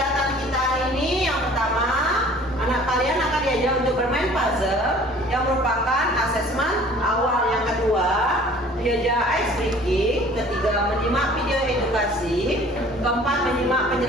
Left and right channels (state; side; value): normal; both; correlation 0.50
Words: kita hari ini, yang pertama, anak kalian akan diajak untuk bermain puzzle yang merupakan asesmen awal. Yang kedua, diajak ice breaking. Ketiga, menyimak video edukasi. Keempat, menyimak